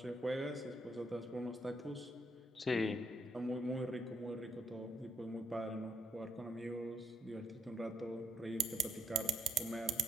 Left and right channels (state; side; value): normal; both; correlation 0.74